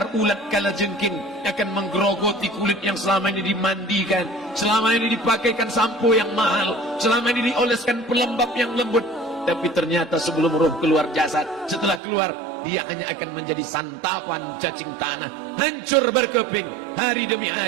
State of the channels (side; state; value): left; drops out; at 12.0 s